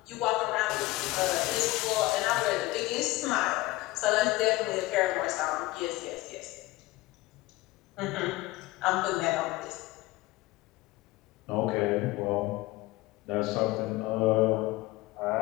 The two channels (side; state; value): right; quieter; 19.6 dB